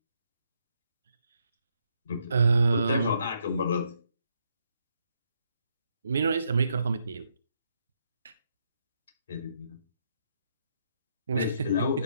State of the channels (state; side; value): inverted; both; correlation -0.75